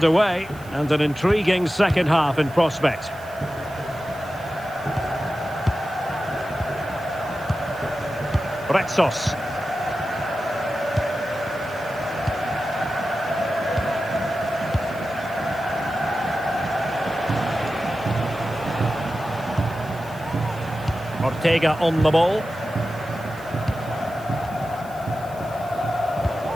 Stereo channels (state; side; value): noise; right; hiss, 22 dB below the sound